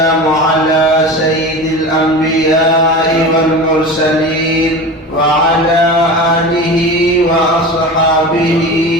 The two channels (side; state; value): both; normal; correlation 0.30